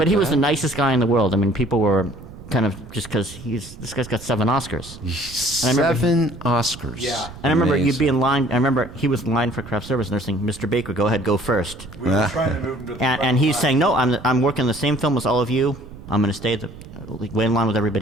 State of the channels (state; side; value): noise; right; rumble, 16 dB below the sound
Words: he was the nicest guy in the world. I mean, people were kind of just because this guy's got 7 Oscars. I remember- 7 Oscars. Yeah. And I remember you'd Amazing. be in line. I remember he was in line for craft service, and they're saying, "Mr. Baker, go ahead, go first." We were trying to move him to the front And he's line. saying, "No, I'm working the same film as all of you. I'm going to stay way in line with